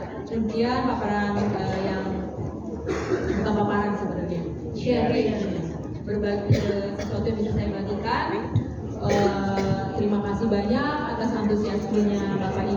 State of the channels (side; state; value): both; identical; correlation 1.00